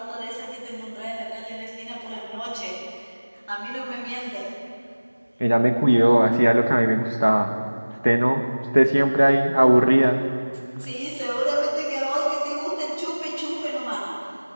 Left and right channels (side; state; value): both; inverted; correlation -1.00